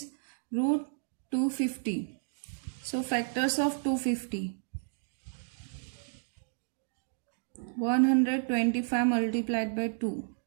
root 250. So factors of 250. 125 multiplied by 2.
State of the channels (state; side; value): silent; left; digital silence